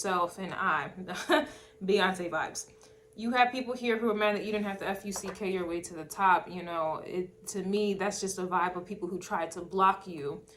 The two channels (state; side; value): identical; both; correlation 1.00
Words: and I. Beyonce vibes. You have people here who are mad that you didn't have to FUCK your way to the top. You know, to me, that's just a vibe of people who tried to block you.